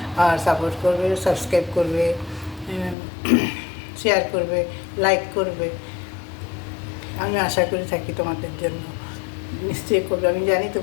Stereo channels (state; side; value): drops out; right; at 3.0 s